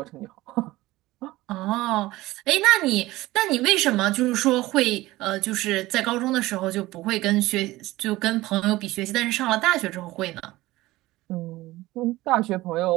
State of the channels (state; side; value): quieter; left; 18.2 dB